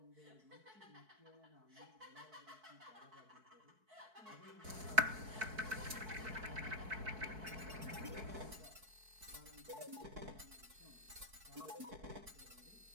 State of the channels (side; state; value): left; late; 4.6 ms